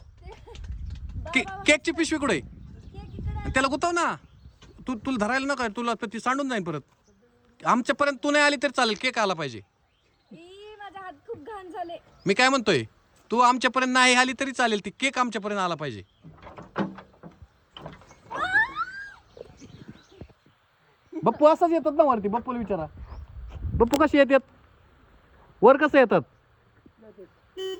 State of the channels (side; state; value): both; identical; correlation 1.00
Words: केकची पिशवी कुठे त्याला गुतव ना. तुला धरायला नका. तुला ती सांडून जाईल परत. आमच्यापर्यंत तू नाही आली तरी चालेल. केक आला पाहिजे. मी काय म्हणतोय. तू आमच्यापर्यंत नाही आली तरी चालेल. ती केक आमच्यापर्यंत आला पाहिजे. बप्पू असाच येतात ना वरती. बप्पूला विचारा. बप्पू कसे येतात वर. कसं येतात